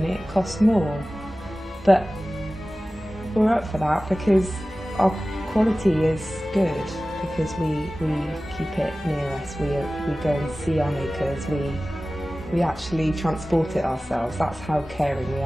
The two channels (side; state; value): both; normal; correlation 0.96